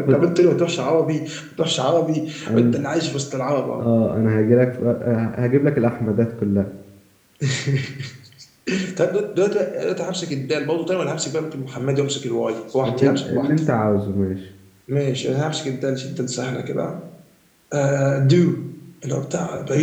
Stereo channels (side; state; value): both; identical; correlation 1.00